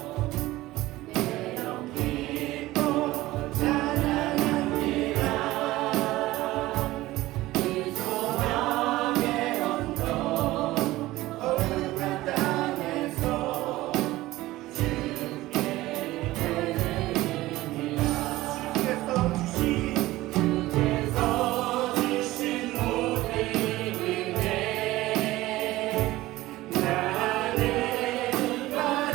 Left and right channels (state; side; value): quieter; left; 17.5 dB